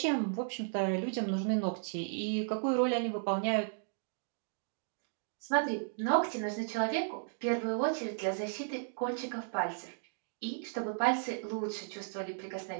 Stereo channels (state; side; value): silent; left; digital silence